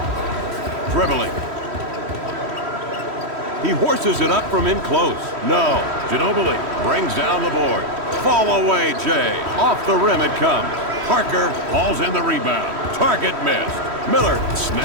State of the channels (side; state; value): left; late; 3.1 ms